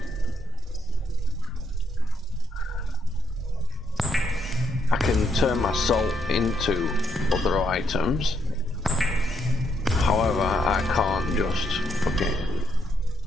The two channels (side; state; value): both; normal; correlation 0.76